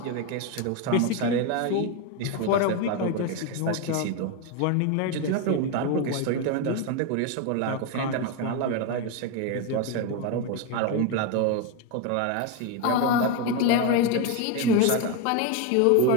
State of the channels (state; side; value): different; both; correlation 0.02